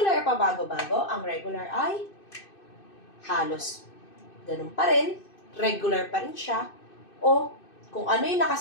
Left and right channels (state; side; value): late; right; 2.6 ms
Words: ay pabago-bago, ang regular ay halos ganun pa rin, regular pa rin siya, o kung ano yung